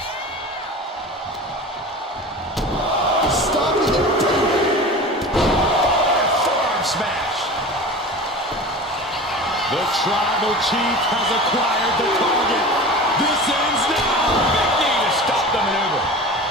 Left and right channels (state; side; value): normal; both; correlation 0.34